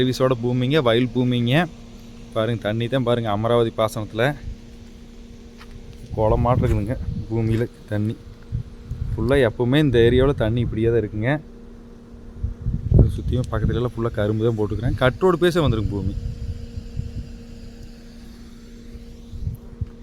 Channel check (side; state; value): both; identical; correlation 1.00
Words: பூமிங்க, வயல் பூமிங்க. பாருங்கள், தண்ணி தான் பாருங்கள், அமராவதி பாசனத்தில் குளமாட்டு இருக்குதுங்க. பூமியில் தண்ணி ஃபுல்லாக எப்போவுமே இந்த ஏரியாவில் தண்ணி இப்படியே தான் இருக்குங்க. சுற்றியும் பக்கத்துலலாம் ஃபுல்லாக கரும்பு தான் போட்டுக்கிறேன். கட்டோடு பேச வந்துருங்க பூமி.